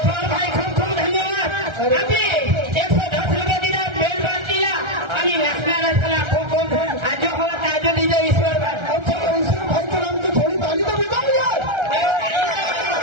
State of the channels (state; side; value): late; left; 1.3 ms